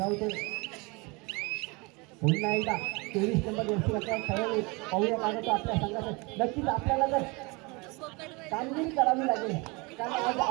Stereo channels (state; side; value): quieter; left; 27.4 dB